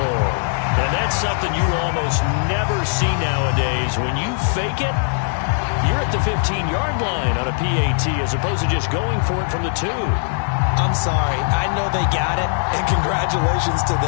And that's something you almost never see nowadays. When you fake it, you're at the 15-yard line on a PAT as opposed to just going for it from the 2. I'm sorry. I know they got it, and congratulations to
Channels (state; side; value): silent; right; digital silence